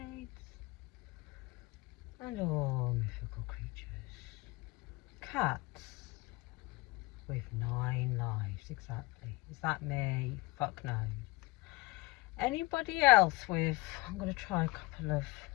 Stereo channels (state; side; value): quieter; right; 22.3 dB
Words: and all mythical creatures. Cats with 9 lives, exactly. Is that me? Fuck no. Anybody else with, I'm going to try a couple of